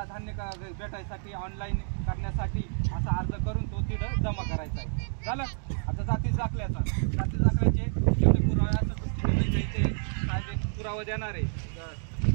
धान्य भेटायसाठी ऑनलाईन करण्यासाठी असा अर्ज करून तो तिथं जमा करायचा आहे. झालं. आता जाती दाखल्याचा, जाती दाखल्याचे जेवढे पुरावे असं तेवढे घ्यायचे, साहेब एक पुरावा देणार आहे,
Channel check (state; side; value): silent; left; digital silence